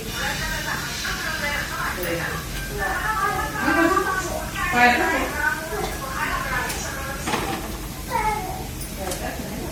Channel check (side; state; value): both; identical; correlation 1.00